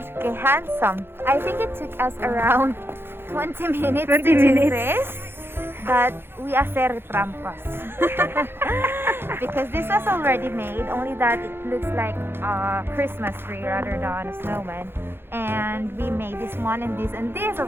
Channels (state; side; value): late; left; 0.11 ms